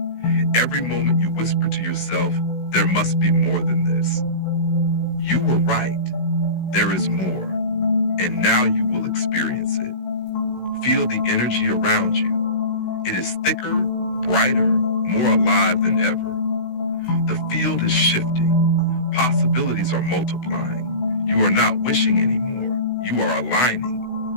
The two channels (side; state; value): right; late; 16 ms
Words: Every moment you whispered to yourself, there must be more than this. You were right. There is more. And now you will experience it. Feel the energy around you. It is thicker, brighter, more alive than ever. The field is shifting. Possibilities are multiplying. You are not wishing anymore. You are aligning.